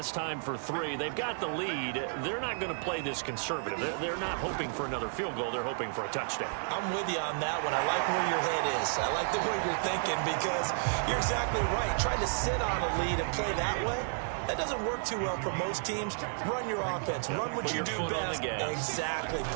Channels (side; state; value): left; silent; digital silence